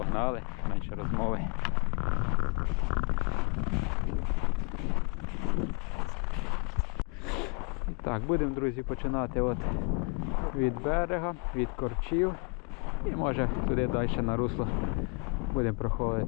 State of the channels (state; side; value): quieter; right; 34.5 dB